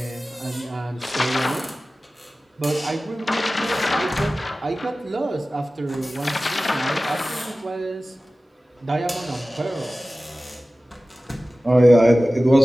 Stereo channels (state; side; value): normal; both; correlation 0.96